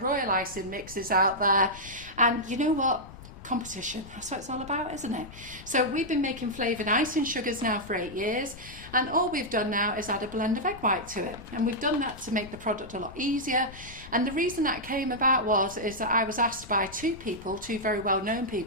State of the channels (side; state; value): left; noise; rumble, 17 dB below the sound